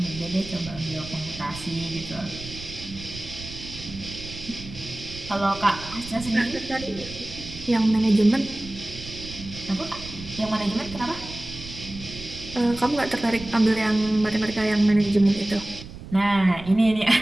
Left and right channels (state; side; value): noise; right; rumble, 13 dB below the sound